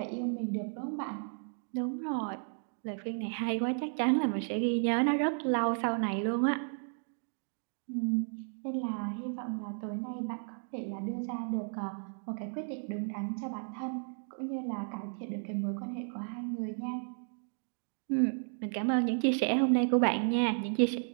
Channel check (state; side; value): silent; left; 55 dB below the other